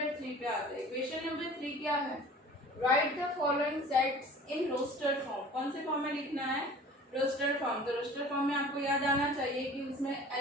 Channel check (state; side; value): normal; both; correlation 0.45